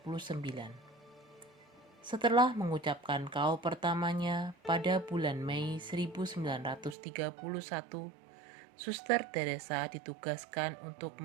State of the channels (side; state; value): left; drops out; at 7.0 s